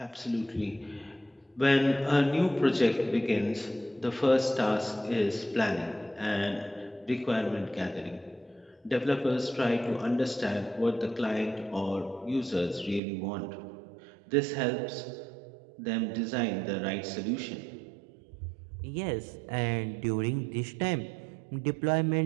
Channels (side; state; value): left; drops out; at 13.0 s